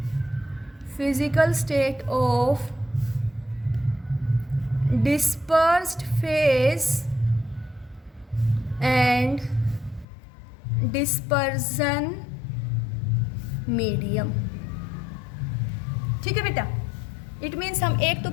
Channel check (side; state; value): right; drops out; at 10.1 s